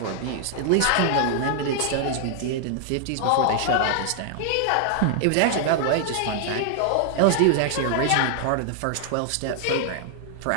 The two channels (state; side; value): different; both; correlation 0.00